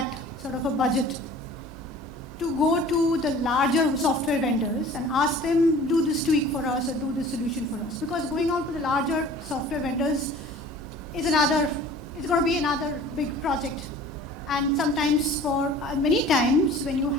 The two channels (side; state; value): both; normal; correlation 0.46